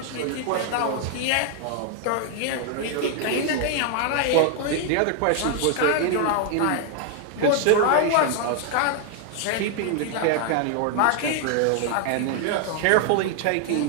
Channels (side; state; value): both; different; correlation 0.00